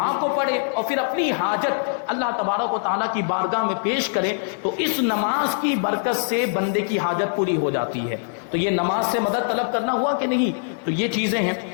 کو پڑھے اور پھر اپنی حاجت اللہ تبارک و تعالیٰ کی بارگاہ میں پیش کرے، تو اس نماز کی برکت سے بندے کی حاجت پوری ہو جاتی ہے۔ تو یہ نماز سے مدد طلب کرنا ہوا کہ نہیں؟ تو یہ چیزیں ہیں۔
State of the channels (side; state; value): right; silent; digital silence